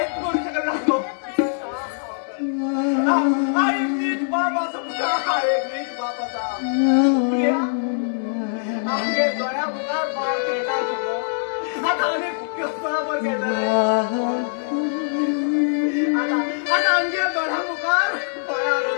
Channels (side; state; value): right; silent; digital silence